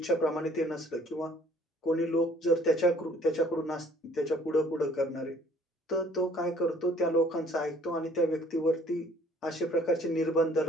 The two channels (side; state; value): both; normal; correlation 0.57